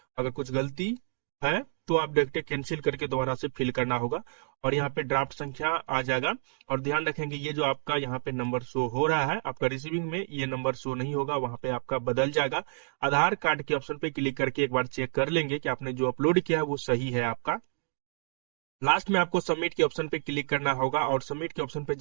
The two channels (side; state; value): left; silent; digital silence